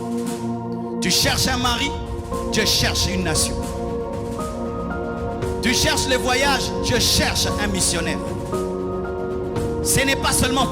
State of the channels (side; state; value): both; identical; correlation 1.00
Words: Tu cherches un mari, Dieu cherche une nation. Tu cherches les voyages, Dieu cherche un missionnaire. Ce n'est pas seulement